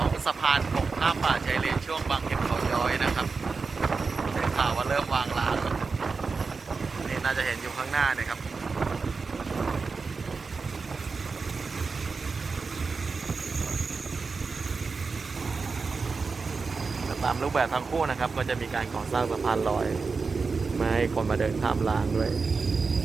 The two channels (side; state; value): left; quieter; 4.6 dB